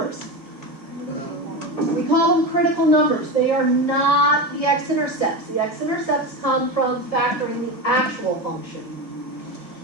We call them critical numbers. They are not the x-intercepts. The x-intercepts come from factoring the actual function.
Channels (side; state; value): right; late; 1.7 ms